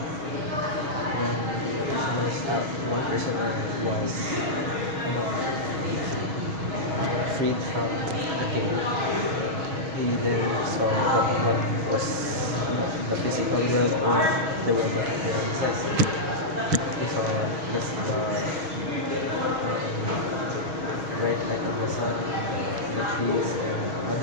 One person was freed from the cave. He then saw what was the physical world or the world that exists. He saw just the bright light of the sun, the trees, and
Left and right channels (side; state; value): left; late; 6.3 ms